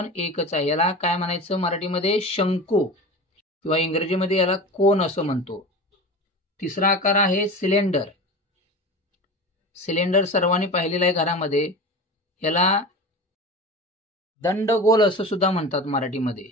1च आहे। याला काय म्हणायचं मराठीमध्ये, शंकू किंवा इंग्रजीमध्ये याला कोन असं म्हणतो। तिसरा आकार आहे सिलेंडर। सिलेंडर सर्वांनी पाहिलेला आहे घरामध्ये। याला दंडगोल असं सुद्धा म्हणतात मराठीमध्ये।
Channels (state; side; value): normal; both; correlation 0.31